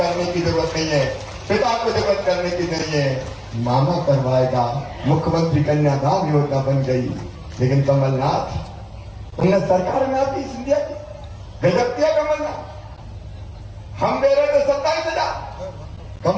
की जरूरत नहीं है, पिता को जरूरत करने की नहीं है, मामा करवाएगा। मुख्यमंत्री कन्यादान योजना बन गई। लेकिन कमलनाथ, उन्हें सरकार में आती सिंधिया की गजब किया कमलनाथ, हम दे रहे थे 27,000,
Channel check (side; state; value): both; identical; correlation 1.00